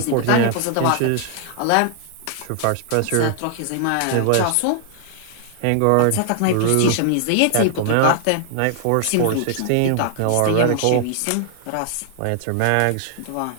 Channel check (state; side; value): different; both; correlation 0.00